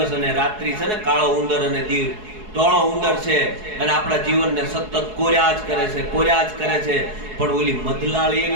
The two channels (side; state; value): left; late; 4.7 ms